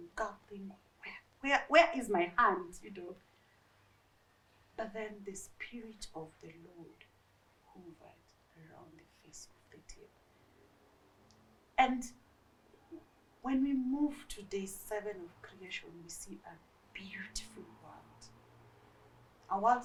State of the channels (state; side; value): identical; both; correlation 1.00